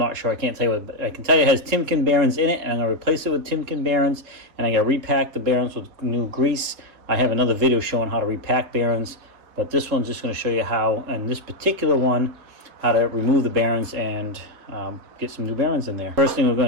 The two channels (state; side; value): late; left; 3.7 ms